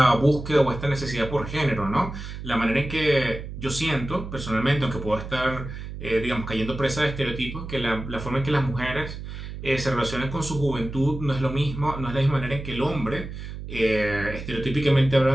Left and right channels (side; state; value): right; noise; hum, 9 dB below the sound